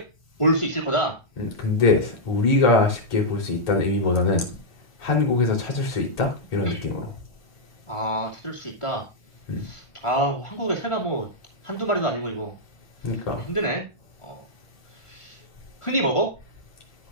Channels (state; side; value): late; right; 1.4 ms